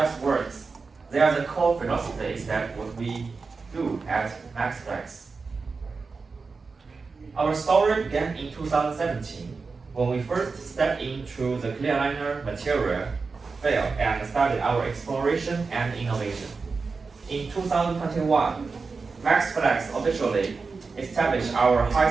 words. They are the core philosophies that what we do at Maxflex. Our story began in 2017 when we first stepped into the clear aligner material field and started our exploration and innovation. In 2021, Maxflex officially established our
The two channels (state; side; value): quieter; left; 4.5 dB